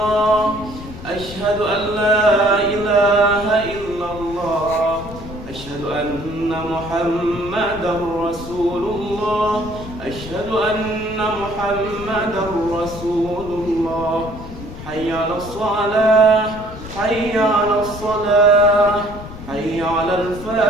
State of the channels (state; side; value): noise; left; rumble, 13 dB below the sound